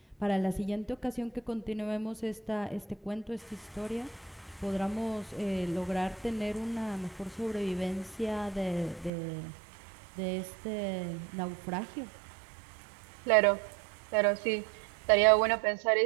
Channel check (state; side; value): drops out; left; at 9.1 s